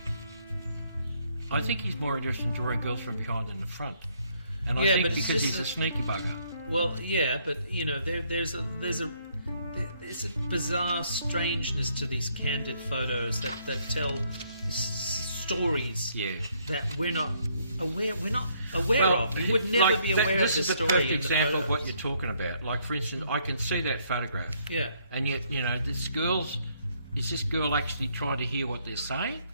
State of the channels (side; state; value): both; inverted; correlation -0.69